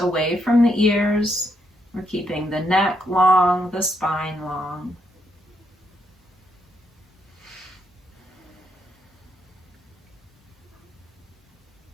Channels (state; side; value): normal; both; correlation 0.77